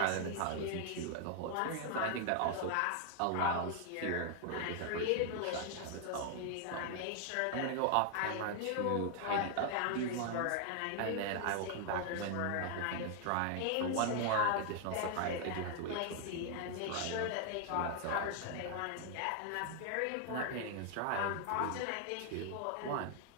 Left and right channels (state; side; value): different; both; correlation 0.00